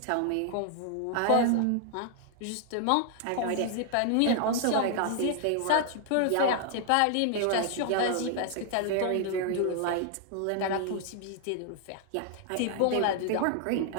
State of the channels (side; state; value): both; different; correlation 0.00